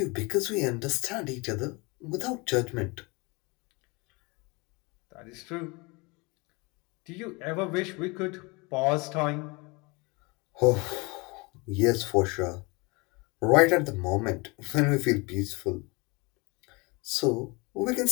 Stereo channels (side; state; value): right; quieter; 27.3 dB